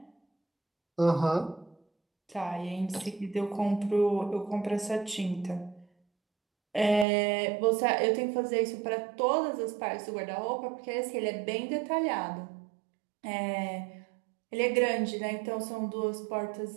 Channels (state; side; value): drops out; left; at 7.1 s